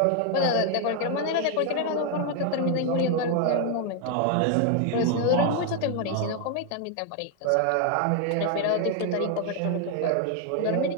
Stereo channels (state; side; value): different; both; correlation 0.01